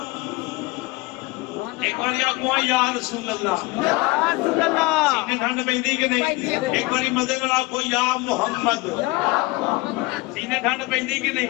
ایک بار آخو یا رسول اللہ سینے ٹھنڈ پہندی کہ نہیں ایک بار مزے نال آخو یا محمد سینے ٹھنڈ پہندی کہ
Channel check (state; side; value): quieter; right; 23.0 dB